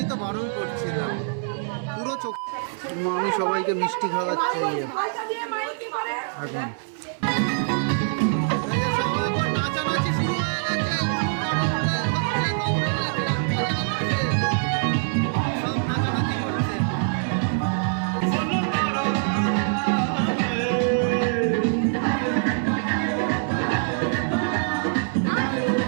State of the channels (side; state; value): left; silent; 57 dB below the other